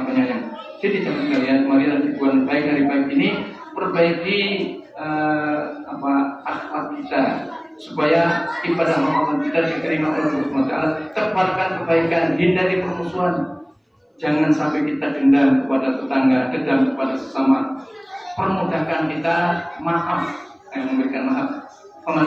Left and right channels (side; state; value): both; identical; correlation 1.00